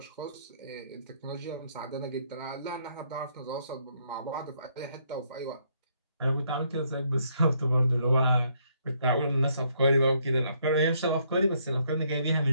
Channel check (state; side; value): inverted; both; correlation -0.71